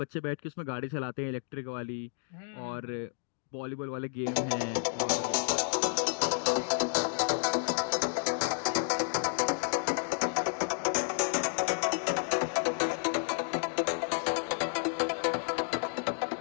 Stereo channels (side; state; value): right; silent; digital silence